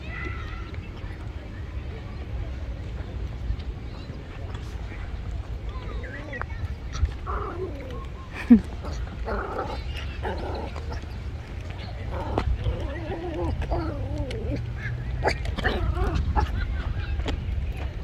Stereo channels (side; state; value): both; identical; correlation 1.00